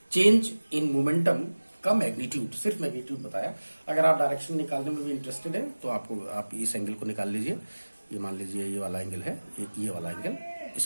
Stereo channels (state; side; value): inverted; both; correlation -1.00